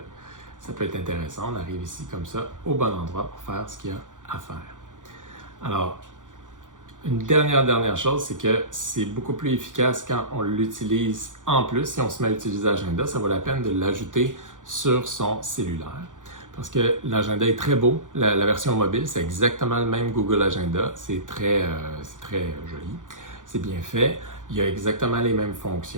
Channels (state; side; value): late; left; 0.87 ms